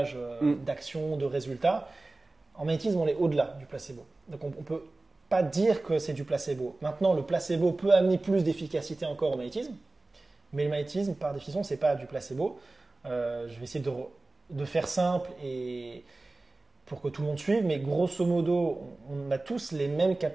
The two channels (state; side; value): quieter; left; 3.0 dB